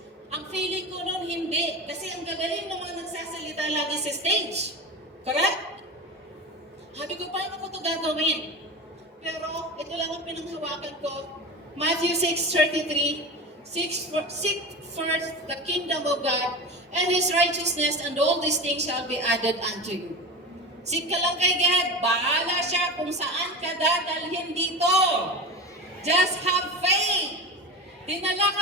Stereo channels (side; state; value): both; normal; correlation 0.27